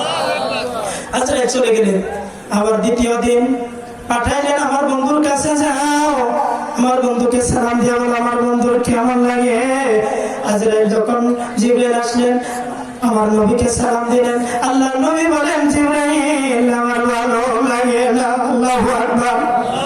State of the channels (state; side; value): identical; both; correlation 1.00